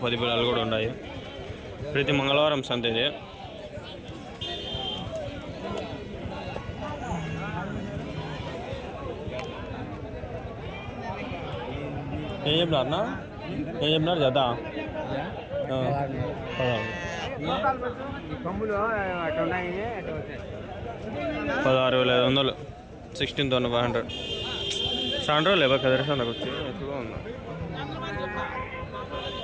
పిల్లలు కూడా ఉన్నాయి. ప్రతి మంగళవారం సంత ఇది. ఏం చెప్పినారన్నా? ఏం చెప్పినారు జత? 16,500, 16,500. చాలా రోజులు లేవా కదిరి సంతకు వచ్చి? ఎక్కువగా ఉందా?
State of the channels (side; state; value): both; identical; correlation 1.00